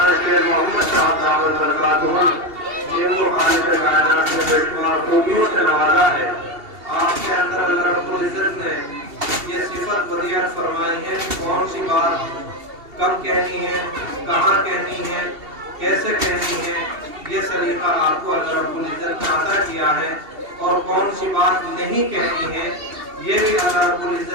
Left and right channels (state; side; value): late; left; 2.7 ms